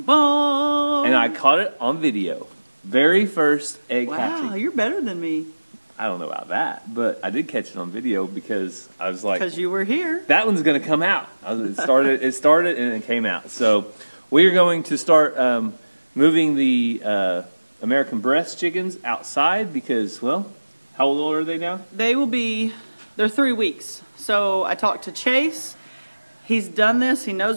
bum. And I caught it on video. Very first egg hatching. Wow, you're better than me. I don't know about that, but I did catch it on video because I was like, because you were here. That one's going to come out. It started and it came out. So we are going to start moving the American breast chickens outside because, well, how old are they now? They're 3 weeks. So I talked to Chase. He's done this. He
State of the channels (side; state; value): both; inverted; correlation -1.00